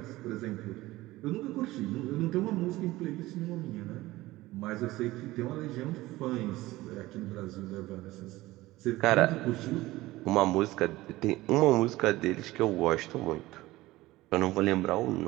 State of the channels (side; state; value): left; quieter; 18.2 dB